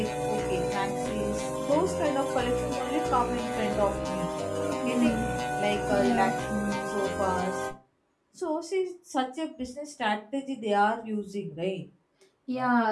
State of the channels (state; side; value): identical; both; correlation 1.00